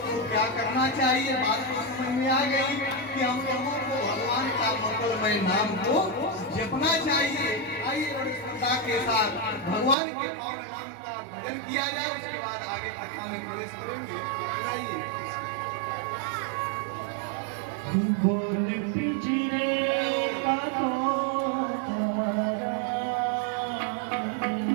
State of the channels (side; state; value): left; drops out; at 10.0 s